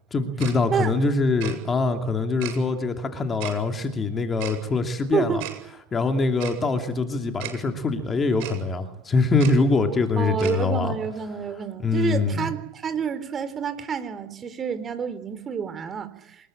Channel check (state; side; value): normal; both; correlation 0.63